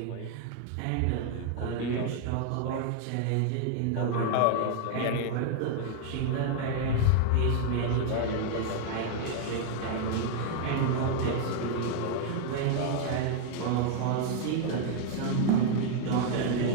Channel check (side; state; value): both; different; correlation 0.00